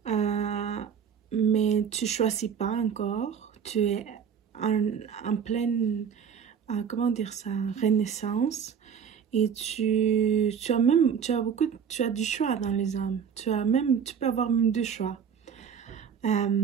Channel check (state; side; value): quieter; left; 7.4 dB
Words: mais tu ne choisis pas encore. Tu es en pleine, comment dire ça, renaissance. Et tu as du choix dans les hommes. Tu peux avoir même 2 choix.